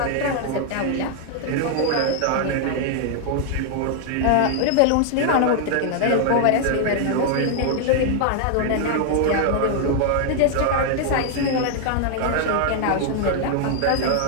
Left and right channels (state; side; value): different; both; correlation 0.00